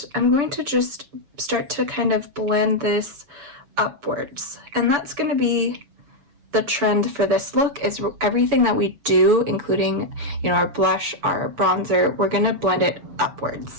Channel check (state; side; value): late; left; 6.9 ms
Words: I'm going to just start to kind of blend this upwards. And that's going to be the trend for this look, is everything that we do, including, you know, our blush, our bronzer, we're going to blend it